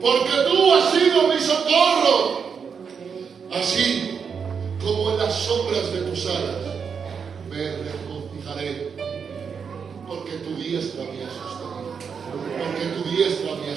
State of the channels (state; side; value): quieter; left; 6.4 dB